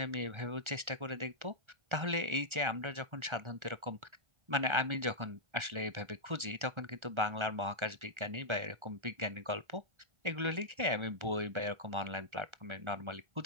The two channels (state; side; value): late; left; 1.4 ms